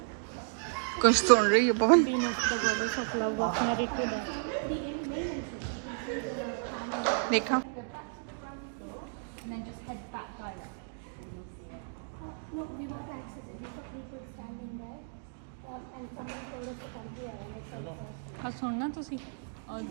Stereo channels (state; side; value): silent; left; digital silence